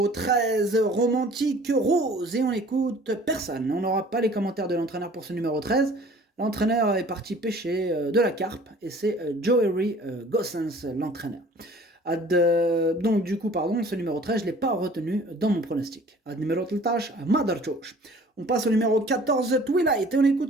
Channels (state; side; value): normal; both; correlation 0.50